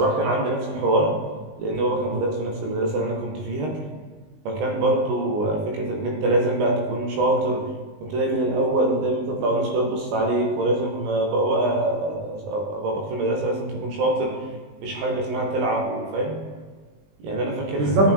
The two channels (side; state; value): left; late; 19 ms